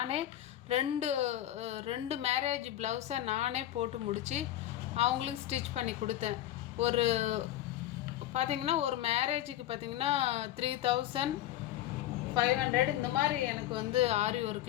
ரெண்டு மேரேஜ் ப்ளவுஸை நானே போட்டு முடித்து அவங்களுக்கு ஸ்டிச் பண்ணி கொடுத்தேன். பார்த்திங்கன்னா ஒரு மேரேஜுக்கு பார்த்திங்கன்னா 3500 இந்த மாதிரி எனக்கு வந்து ஆரி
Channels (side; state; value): right; quieter; 13.3 dB